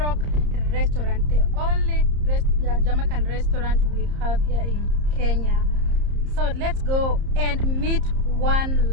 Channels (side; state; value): left; late; 30 ms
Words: restaurant, the only Jamaican restaurant we have here in Kenya. So let's go and meet One